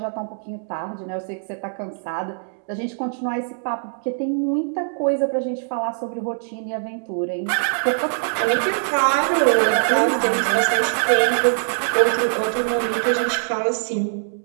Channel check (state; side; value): silent; left; digital silence